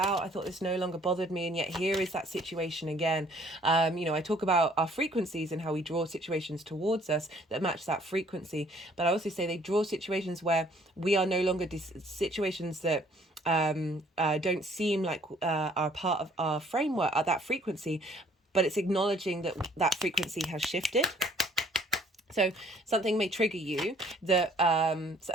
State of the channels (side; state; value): both; normal; correlation 0.59